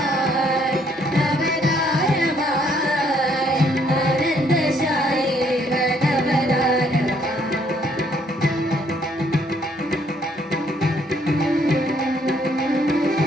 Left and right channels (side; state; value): both; normal; correlation 0.67